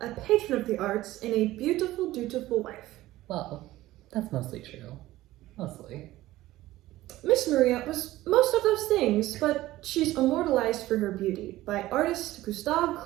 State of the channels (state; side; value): quieter; left; 16.3 dB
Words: a patron of the arts, and a beautiful, dutiful wife. Well, that's mostly true. Mostly. Miss Maria was most of those things, but she's immortalized for her beauty by artist Gustav